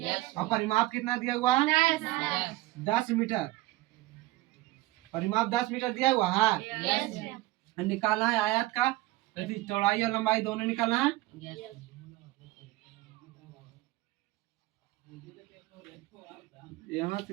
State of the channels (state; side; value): quieter; left; 18.3 dB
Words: और परिमाप कितना दिया हुआ 10 मीटर। परिमाप 10 मीटर दिया हुआ है। निकालना है आयत का चौड़ाई और लंबाई दोनों निकालना है। यहाँ